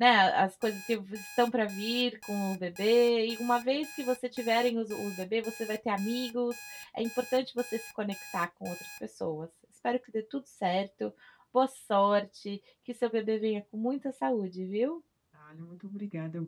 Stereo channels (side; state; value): both; identical; correlation 1.00